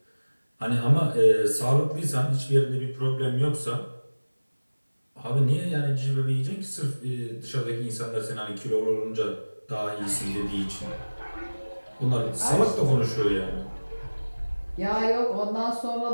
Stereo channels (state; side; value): inverted; both; correlation -1.00